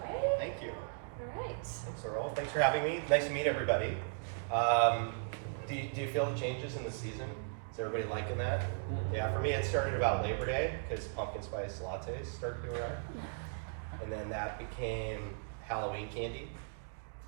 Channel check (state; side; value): silent; left; digital silence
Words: Thank you. All right. Thanks, Earl. Thanks for having me. Nice to meet everybody. Do you feel the changes in the season? Is everybody liking that? Yeah, for me it started about Labor Day because pumpkin spice lattes started to arrive. And then that became Halloween candy.